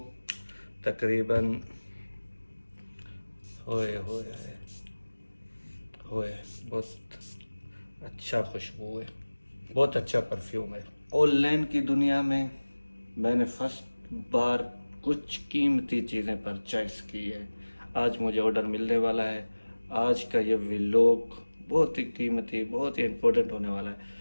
तकरीबन होए होए होए बहुत अच्छा खुशबू है, बहुत अच्छा परफ्यूम है। ऑनलाइन की दुनिया में मैंने फर्स्ट बार कुछ कीमती चीज़ें परचेस की है। आज मुझे ऑर्डर मिलने वाला है। आज का ये व्लॉग बहुत ही कीमती, बहुत ही इम्पोर्टेंट होने वाला है।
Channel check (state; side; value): inverted; both; correlation -1.00